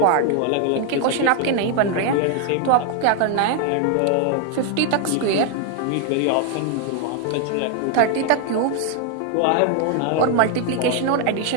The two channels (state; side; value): different; both; correlation 0.01